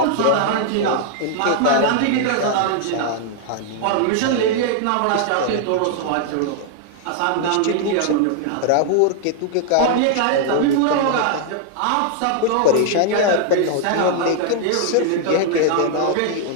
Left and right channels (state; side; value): different; both; correlation 0.00